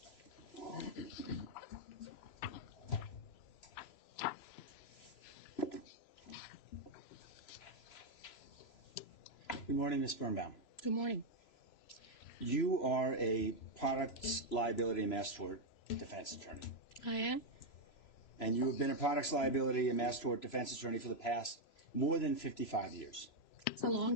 Good morning, Ms. Birnbaum. Good morning. You are a products liability and mass tort defense attorney. I am. And you have been a products liability and mass tort defense attorney for the past more than 55 years. It's a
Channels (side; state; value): right; late; 3.0 ms